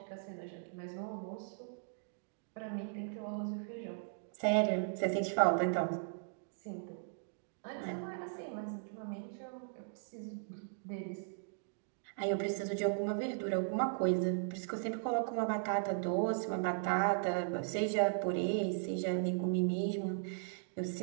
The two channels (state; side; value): silent; left; digital silence